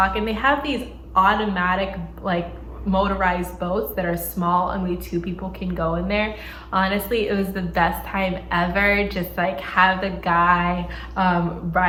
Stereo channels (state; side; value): identical; both; correlation 1.00